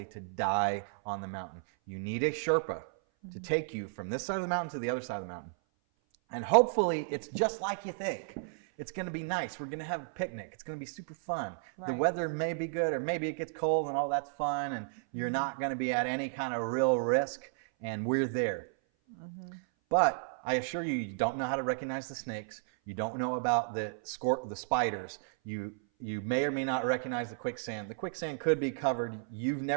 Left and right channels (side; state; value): left; silent; 56 dB below the other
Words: to die on the mountain. You need a Sherpa to take you from this side of the mountain to the other side of the mountain. And hopefully it's just like you think. It's going to be nice. We're going to have a picnic. It's going to be super fun. Right. The weather may be good, or maybe it gets cold and all that's fun, and you're not going to be at any kind of real risk, and we're there. But I assure you, you don't know how to recognize the snakes. You don't know about the spiders. You may or may not recognize the quicksand. The quicksand could be covered. You've